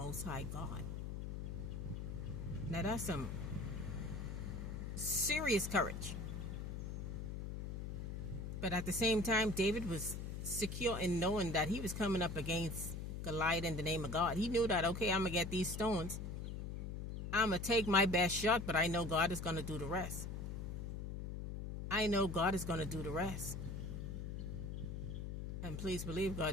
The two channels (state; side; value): noise; left; hum, 5 dB below the sound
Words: High God. Now that's some serious courage. But at the same time, David was secure in knowing that he was coming up against Goliath in the name of God. He knew that, okay, I'm going to get these stones. I'm going to take my best shot, but I know God is going to do the rest. I know God is going to do the rest. And please believe